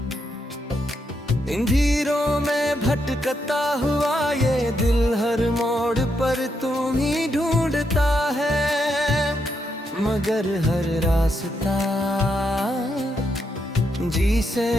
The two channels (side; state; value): both; normal; correlation 0.80